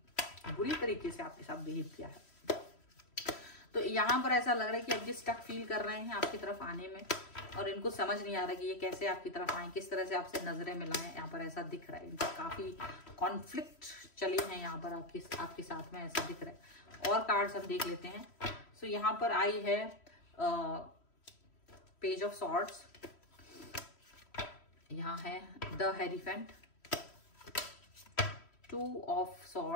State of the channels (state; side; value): late; right; 3.1 ms